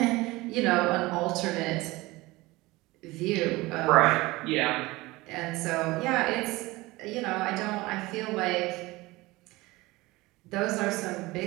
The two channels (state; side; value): quieter; left; 20.8 dB